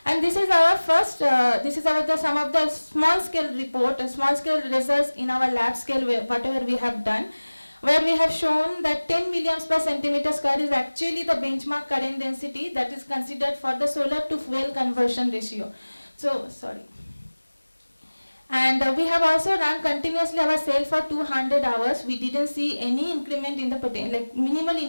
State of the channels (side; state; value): both; inverted; correlation -1.00